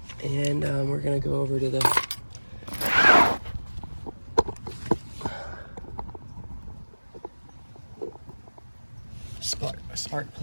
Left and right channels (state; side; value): inverted; both; correlation -1.00